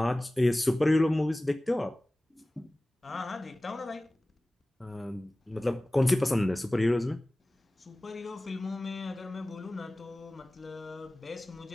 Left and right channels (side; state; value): both; normal; correlation 0.98